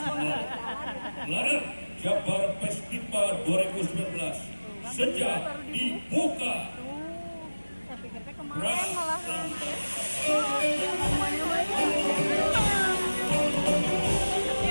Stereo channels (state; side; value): inverted; both; correlation -1.00